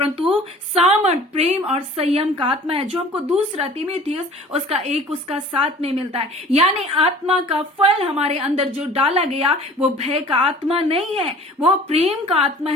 सामर्थ, प्रेम और संयम का आत्मा है, जो हमको दूसरा तीमुथियुस उसका 1 उसका 7 में मिलता है। यानी आत्मा का फल हमारे अंदर जो डाला गया, वो भय का आत्मा नहीं है, वो प्रेम का आत्मा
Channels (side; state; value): both; normal; correlation 0.46